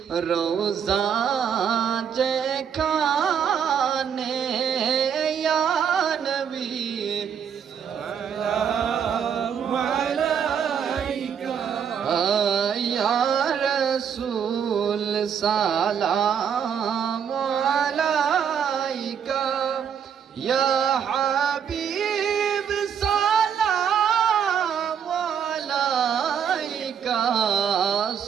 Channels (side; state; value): left; quieter; 7.9 dB